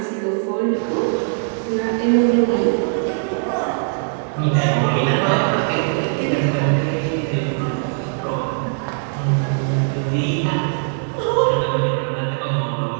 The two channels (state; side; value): silent; left; 63 dB below the other